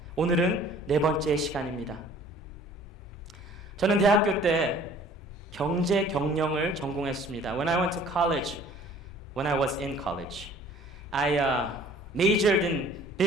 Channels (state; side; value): normal; both; correlation 0.52